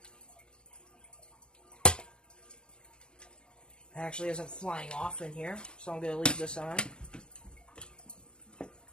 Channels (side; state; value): right; late; 0.050 ms